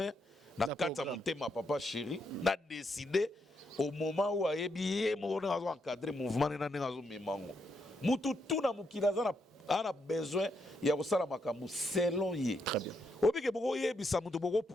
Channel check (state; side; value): normal; both; correlation 0.79